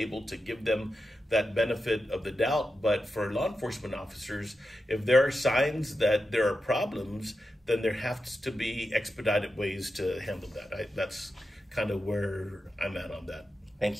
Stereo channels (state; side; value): normal; both; correlation 0.89